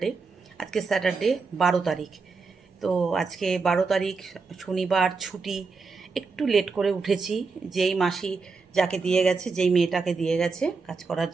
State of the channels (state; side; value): quieter; left; 4.5 dB